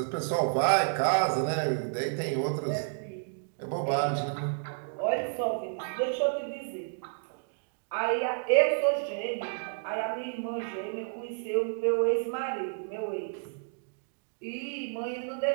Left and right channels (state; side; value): silent; left; digital silence